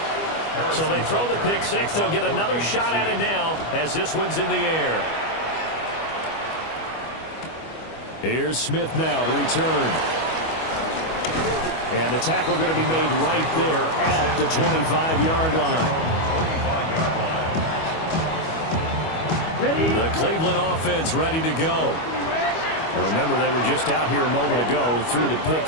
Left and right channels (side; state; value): right; late; 25 ms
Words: So they throw the pick six. They'll get another shot at it now as this one's in the air. Here's Smith now to return. And the tackle going to be made right there at the 25-yard line. Ready? The Cleveland offense ready to go. And remember, they were just out here a moment ago through the pick